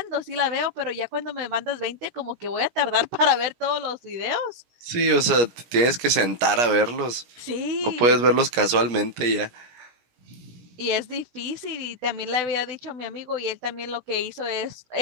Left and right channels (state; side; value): late; left; 17 ms